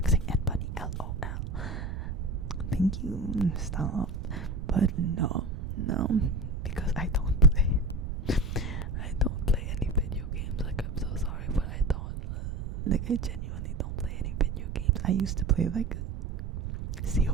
and funny. LOL. Thank you. Stop. But no, because I don't play. I don't play any video games. Like, I'm so sorry, but I don't. Like, I genuinely don't play any video games. I used to play like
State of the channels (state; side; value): noise; right; rumble, 5 dB below the sound